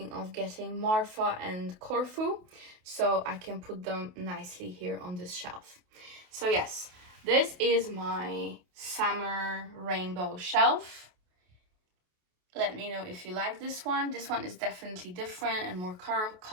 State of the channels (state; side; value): late; left; 28 ms